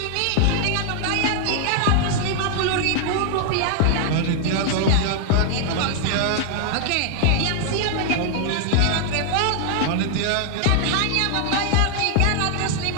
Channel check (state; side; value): different; both; correlation 0.00